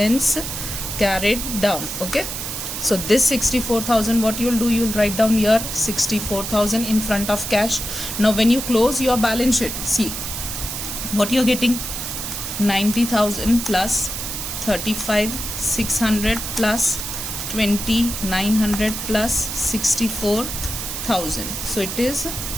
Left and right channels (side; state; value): right; noise; hiss, 5 dB below the sound